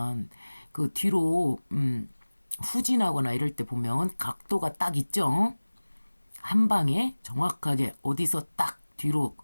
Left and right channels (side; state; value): both; inverted; correlation -1.00